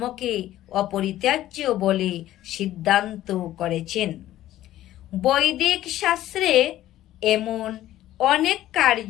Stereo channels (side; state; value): right; quieter; 13.9 dB